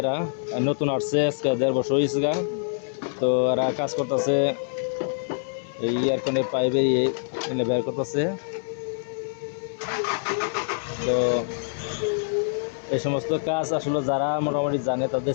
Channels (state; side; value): silent; right; digital silence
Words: নতুন আসছে, আজকে 1.5 বছর হয়েছে গা। তো এরা কাজ করতেছে, এই ইয়ারকনের পাইপে এনে বের করতেছে। তো এই সমস্ত কাজ আসলে যারা মোটামুটি জানে তাদের